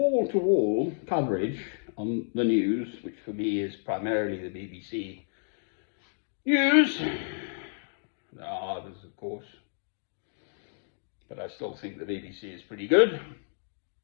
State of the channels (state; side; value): silent; right; digital silence